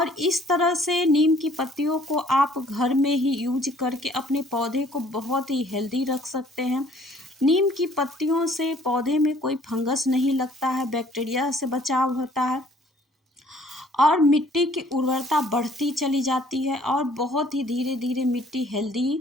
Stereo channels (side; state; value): both; normal; correlation 0.58